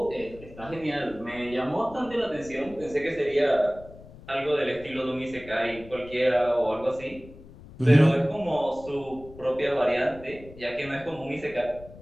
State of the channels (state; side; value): noise; left; rumble, 19 dB below the sound